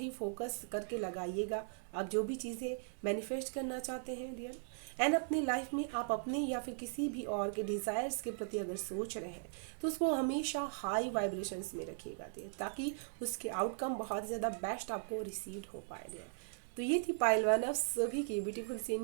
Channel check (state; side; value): silent; left; digital silence